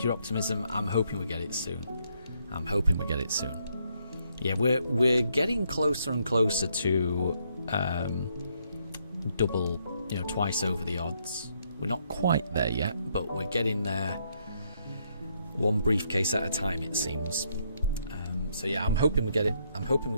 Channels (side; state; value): both; inverted; correlation -0.73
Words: your optimism. I'm hoping we get it soon. I'm hoping we get it soon. Yeah, we're getting closer and closer to double, twice over the odds. We're not quite there yet, but we're getting there. One briefcase at a time, it seems. So yeah, I'm hoping we get it. I'm hoping we